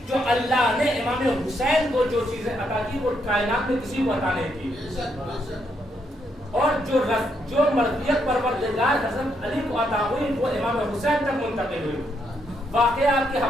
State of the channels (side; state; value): both; normal; correlation 0.77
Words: جو اللہ نے امام حسین کو جو چیزیں عطا کی وہ کائنات میں کسی کو عطا نہیں کی, اور جو مرضیت پروردگار حضرت علی کو عطا ہوئی وہ امام حسین تک منتقل ہوئی. واقعہ آپ کے